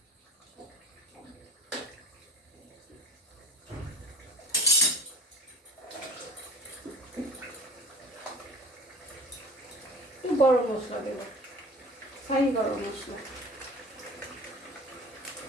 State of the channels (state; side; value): normal; both; correlation 0.41